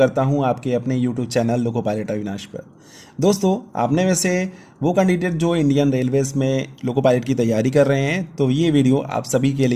हूं आपके अपने YouTube channel loco pilot Avinash पर। दोस्तों, आपने में से वो कैंडिडेट जो इंडियन रेलवेज़ में लोको पायलट की तैयारी कर रहे हैं, तो ये वीडियो आप सभी के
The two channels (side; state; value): both; identical; correlation 1.00